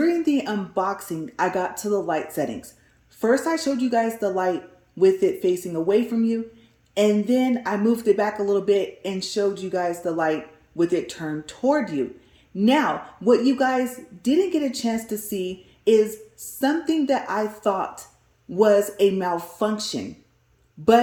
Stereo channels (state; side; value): identical; both; correlation 1.00